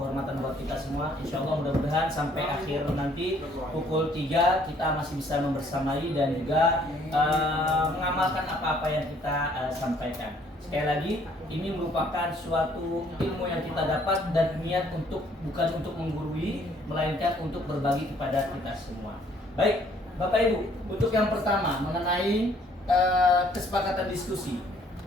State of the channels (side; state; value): both; normal; correlation 0.62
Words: buat kita semua. Insya Allah mudah-mudahan sampai akhir nanti pukul 3 kita masih bisa membersamai dan juga mengamalkan apa-apa yang kita sampaikan. Sekali lagi, ini merupakan suatu ilmu yang kita dapat dan niat bukan untuk menggurui, melainkan untuk berbagi kepada kita semua. Baik, Bapak Ibu, untuk yang pertama mengenai kesepakatan diskusi.